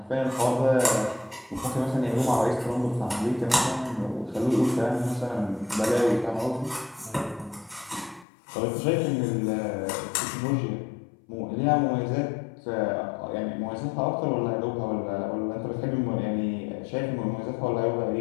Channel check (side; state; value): right; drops out; at 8.2 s